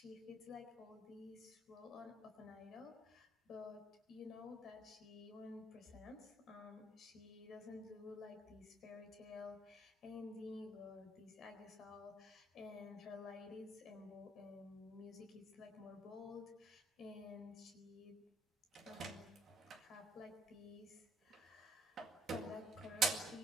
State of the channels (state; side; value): normal; both; correlation 0.67